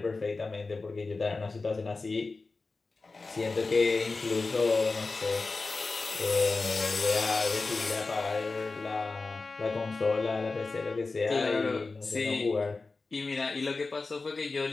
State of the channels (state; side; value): quieter; right; 3.8 dB